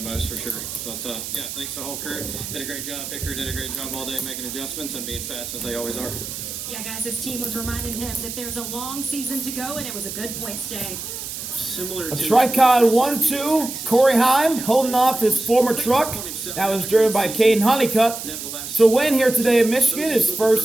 most for sure. But yeah, thanks to the whole crew. Did a great job. Picker did a great job all day making adjustments and being fast as they always are. Yeah, guys, his team was reminding him that there's a long season to go, and it was a good points day. A Tricon 1-2, Corey Heim holding off his former truck. That was driven by Kaden Honeycutt. So win here today in Michigan, his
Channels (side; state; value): right; noise; hiss, 8 dB below the sound